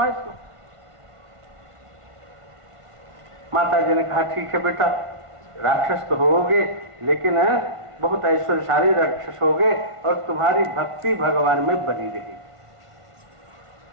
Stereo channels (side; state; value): left; late; 1.5 ms